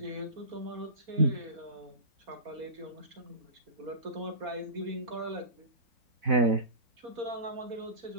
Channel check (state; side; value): late; left; 4.0 ms